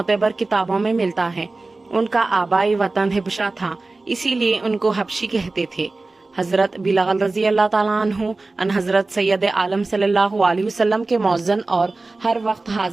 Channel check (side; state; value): left; quieter; 3.4 dB